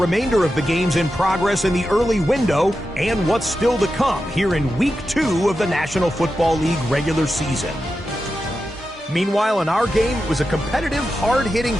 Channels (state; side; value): normal; both; correlation 0.90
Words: of the games in progress in the early window and what's still to come here in Week 2 of the National Football League regular season. Meanwhile, in our game, it was a competitive, hard-hitting